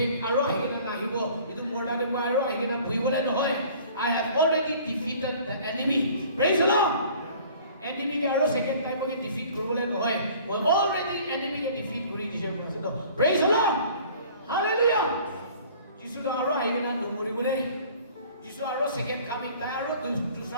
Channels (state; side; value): inverted; both; correlation -0.50